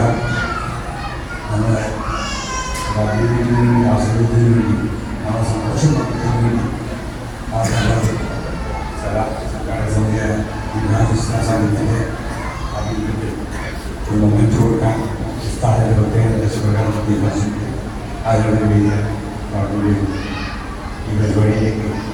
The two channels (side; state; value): both; identical; correlation 1.00